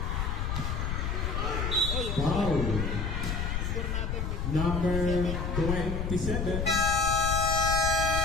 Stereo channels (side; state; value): left; noise; rumble, 1 dB below the sound